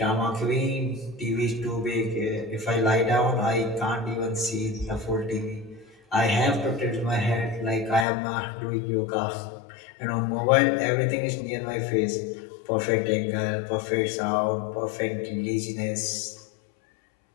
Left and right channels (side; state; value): right; drops out; at 8.1 s